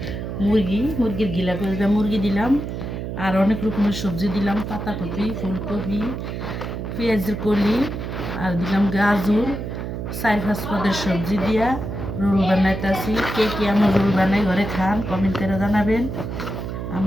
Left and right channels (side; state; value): right; noise; hum, 5 dB below the sound